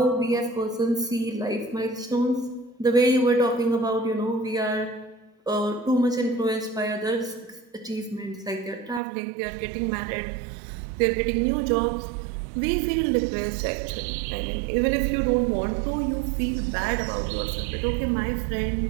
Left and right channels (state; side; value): drops out; left; at 9.0 s